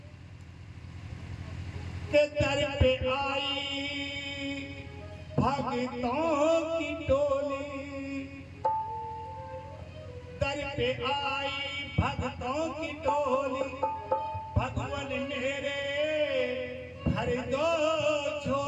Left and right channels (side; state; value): both; identical; correlation 1.00